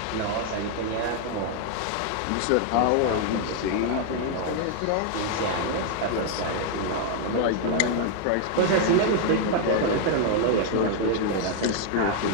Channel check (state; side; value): different; both; correlation 0.00